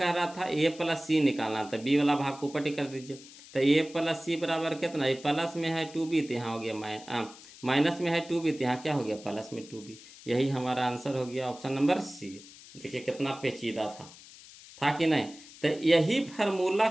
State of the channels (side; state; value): left; noise; hiss, 19 dB below the sound